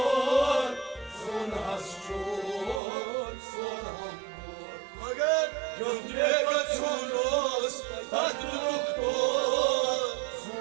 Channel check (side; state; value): left; drops out; at 2.8 s